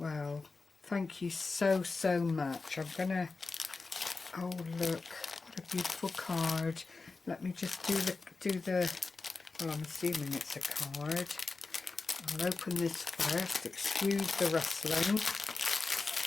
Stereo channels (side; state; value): right; quieter; 4.0 dB